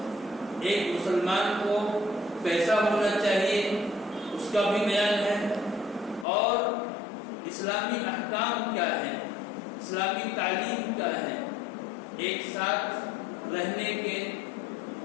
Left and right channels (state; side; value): drops out; right; at 6.2 s